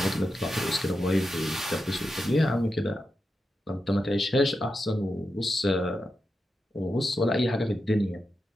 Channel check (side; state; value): both; normal; correlation 0.89